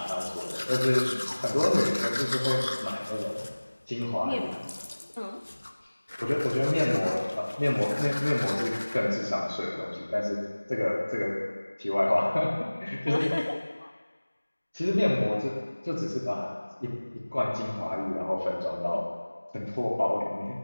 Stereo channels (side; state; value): both; inverted; correlation -1.00